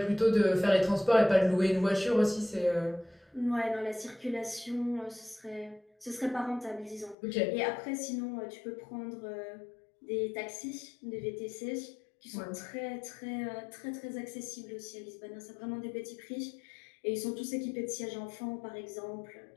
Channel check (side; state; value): right; drops out; at 7.2 s